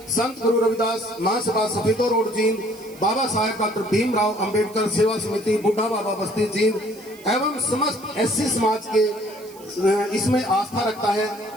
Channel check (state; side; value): noise; right; hiss, 22 dB below the sound